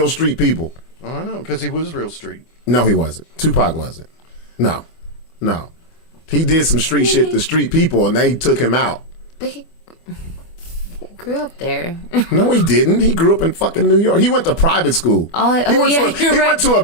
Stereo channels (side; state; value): right; late; 30 ms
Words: street people. Oh, I know, because he was real street. No, he wasn't. Tupac wasn't. No. He did some street shit to street people, and they took him out. But he grew up there. No, he didn't. He grew up in fucking New York. He went to private school. He went to a